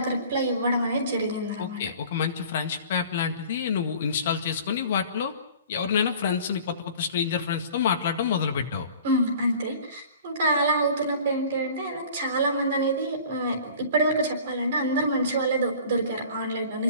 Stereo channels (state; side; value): inverted; both; correlation -0.45